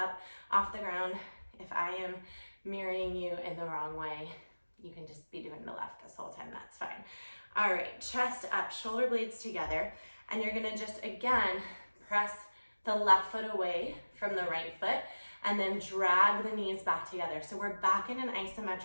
off the ground. If I am mirroring you in the wrong way, you can just be doing the left this whole time, that's fine. All right, chest up, shoulder blades together, and you're gonna just, again, press the left foot away from the right foot, and then drag the knees back together. So we're back in an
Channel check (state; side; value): inverted; both; correlation -1.00